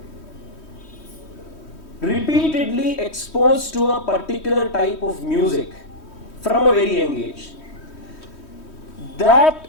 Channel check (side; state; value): right; late; 3.1 ms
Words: repeatedly exposed to a particular type of music from a very young age, that